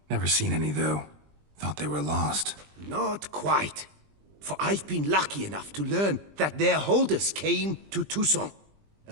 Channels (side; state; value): left; late; 20 ms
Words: Never seen any, though. Thought they were lost. Not quite. For I've been lucky enough to learn that their holders came to Toussaint.